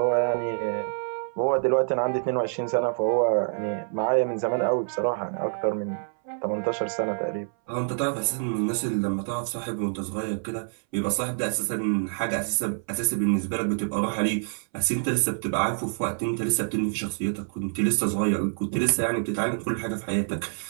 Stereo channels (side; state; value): left; silent; 60 dB below the other